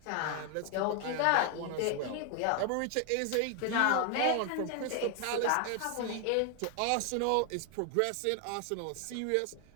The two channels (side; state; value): both; different; correlation 0.00